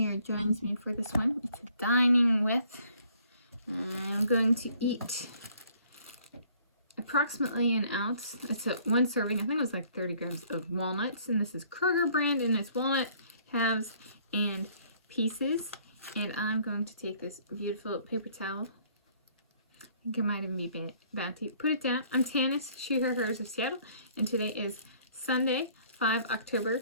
joins me for this one. It's a dining with. I'm going to eat approximately an ounce. It's one serving. I think it was like 30 grams of walnuts. And this is Kroger brand. And it's walnut, halves, and pieces. And I'm going to take this beautiful paper towel. I think it might even be Bounty. Put it down. I'm Tanis, she, her, hers of Seattle. And today is Sunday, 5 October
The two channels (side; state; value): both; inverted; correlation -0.60